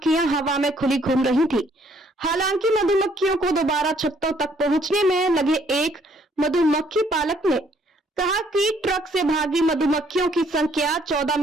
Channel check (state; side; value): normal; both; correlation 0.65